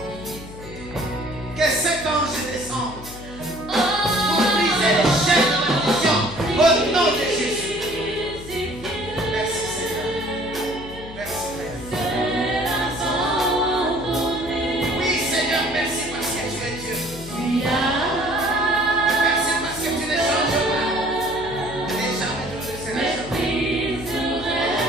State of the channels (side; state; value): left; noise; hum, 15 dB below the sound